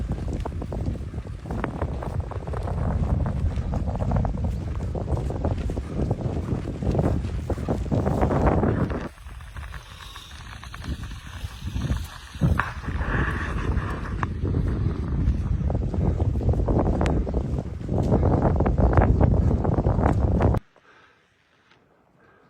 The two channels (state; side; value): identical; both; correlation 1.00